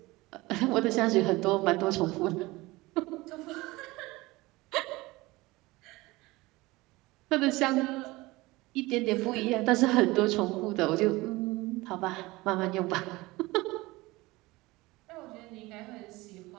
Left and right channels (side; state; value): left; quieter; 20.9 dB